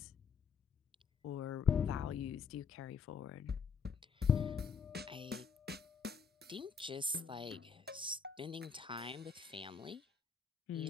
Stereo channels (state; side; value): quieter; right; 6.1 dB